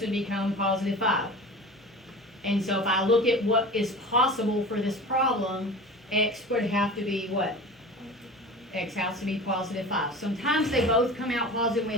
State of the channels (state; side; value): normal; both; correlation 0.36